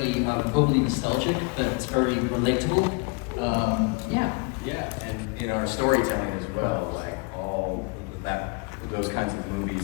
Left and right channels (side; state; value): right; quieter; 32.1 dB